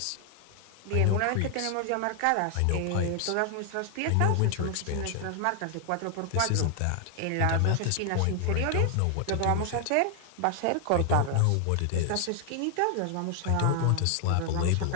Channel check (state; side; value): different; both; correlation 0.00